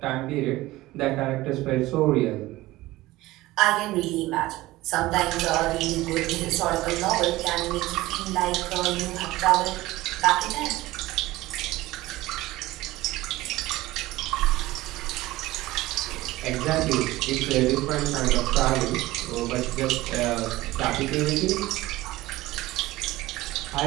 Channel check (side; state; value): left; quieter; 18.1 dB